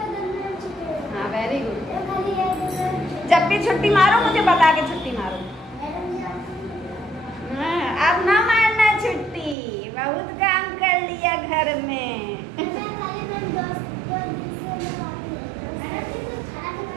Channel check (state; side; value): drops out; left; at 9.6 s